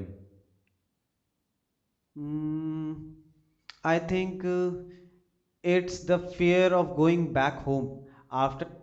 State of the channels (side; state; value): both; identical; correlation 1.00